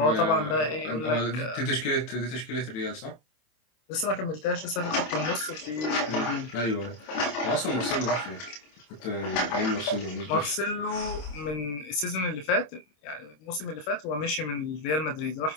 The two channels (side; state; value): right; late; 26 ms